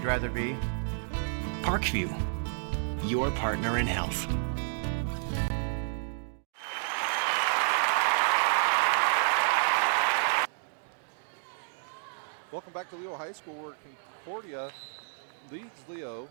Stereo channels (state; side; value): silent; left; digital silence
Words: rather be? Parkview, your partner in health. Welcome back to Leo High School, where Concordia leads Leo